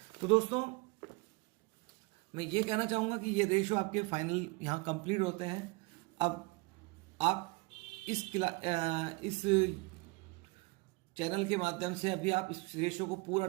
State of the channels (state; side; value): quieter; left; 26.6 dB